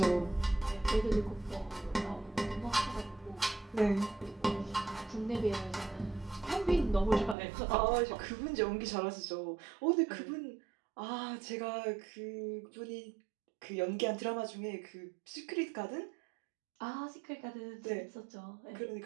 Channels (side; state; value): left; drops out; at 7.4 s